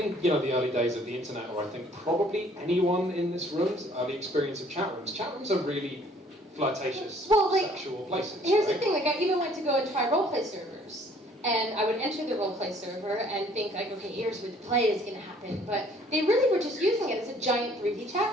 the early days of the internet, or I think probably anyone in this room's early experience of chat rooms are really flirtatious, sexual places. Here's right? the thing, I even went to go and try roleplay servers. And I would enter the roleplay server and think, okay, here's where the play is going to happen. But they really were just using it as a giant 3D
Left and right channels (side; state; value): both; normal; correlation 0.58